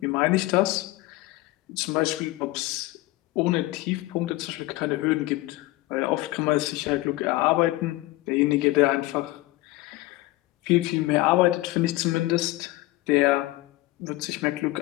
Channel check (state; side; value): quieter; right; 18.9 dB